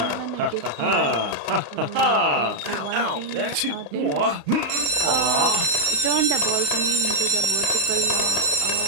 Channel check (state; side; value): late; left; 35 ms